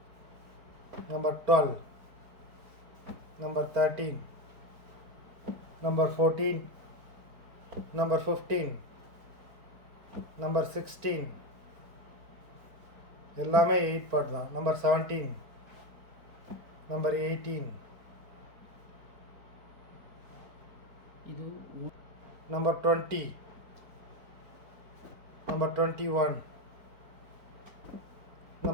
number 12, number 13, number 14, number 15, number 16. எல்லாமே 8 பார்ட் தான். நம்பர் 17, நம்பர் 18, இது நம்பர் 20, நம்பர் 21,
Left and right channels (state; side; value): late; left; 4.4 ms